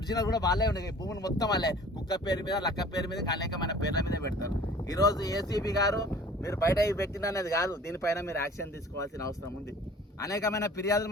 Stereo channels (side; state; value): both; normal; correlation 0.47